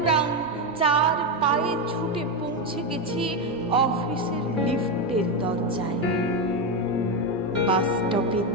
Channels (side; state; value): both; normal; correlation 0.09